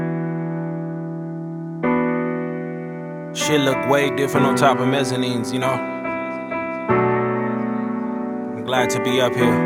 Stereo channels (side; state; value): both; identical; correlation 1.00